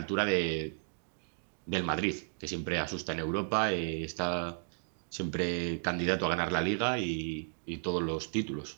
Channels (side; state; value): left; silent; 55 dB below the other